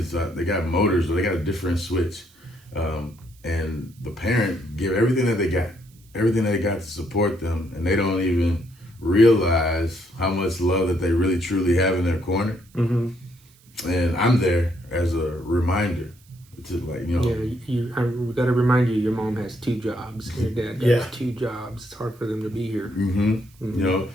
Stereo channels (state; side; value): noise; right; hiss, 29 dB below the sound